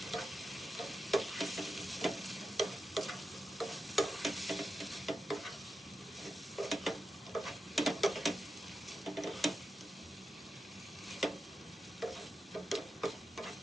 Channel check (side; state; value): both; normal; correlation 0.89